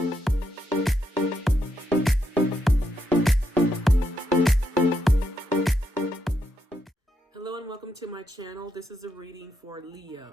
and welcome to my channel. This is a reading for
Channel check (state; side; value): normal; both; correlation 0.80